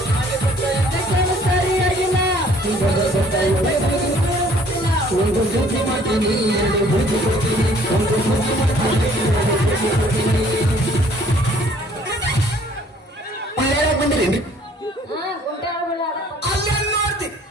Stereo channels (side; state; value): both; normal; correlation 0.57